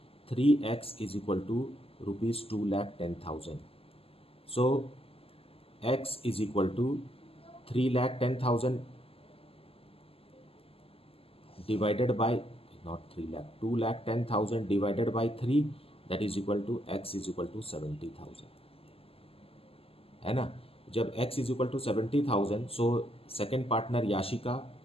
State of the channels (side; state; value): right; late; 0.28 ms